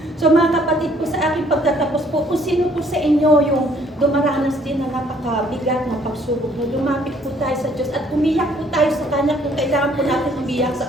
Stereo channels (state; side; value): normal; both; correlation 0.62